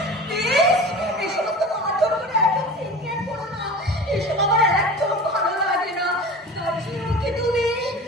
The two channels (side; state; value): both; normal; correlation 0.36